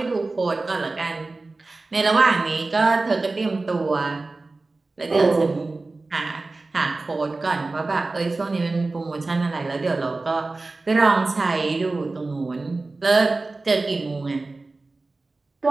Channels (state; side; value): quieter; left; 3.4 dB